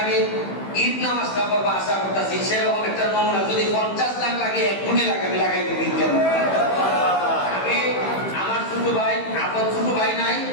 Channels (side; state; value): right; late; 15 ms